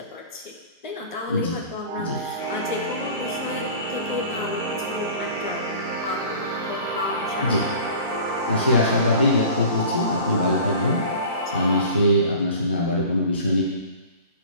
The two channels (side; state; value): both; inverted; correlation -0.41